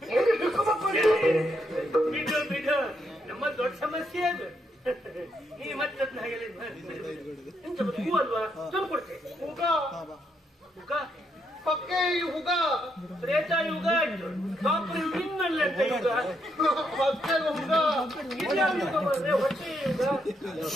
ಬಿಡು, ನಮ್ಮ ದೊಡ್ಡ ಸಮಸ್ಯೆ ಅದು. ಈ ಮತ್ತೆ ಎಂತ ಹೂ ಅಲ್ವಾ? ತಂದು ಕೊಡ್ತೆ. ಹುಗ ಹುಗ ಪಕ್ಕೆ ಹುಗ. ತ್ರೇತಾ ಯುಗ ಆಯ್ತು, ಕಾಪುರಿ ಇನ್ನಲ್ಲ ಅಂತ ಯುಗ. ಪಕ್ಕೆ ಹುಗ. ಯುಗ ಬಂದ್ರೆ ಹೊಟ್ಟೆ ಯುಗ.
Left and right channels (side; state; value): both; normal; correlation 0.77